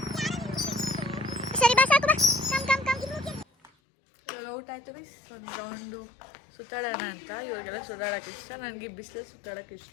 ಸರಿ ಬಾ ಸಾಕು ಬಾ. ಇವಾಗ ಔಟ್ ಆಯ್ತು ಬೈ. ಒಂದು ರೌಂಡು ಸುತ್ತಾಡೋಣ ಅಂತ. ಇವಾಗೆಲ್ಲ ಸುತ್ತಾಡೋಕೆ ಇಷ್ಟ, ನನಗೆ ಬಿಸಿಲಲ್ಲಿ ಸುತ್ತಾಡೋಕೆ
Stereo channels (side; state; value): right; drops out; at 3.7 s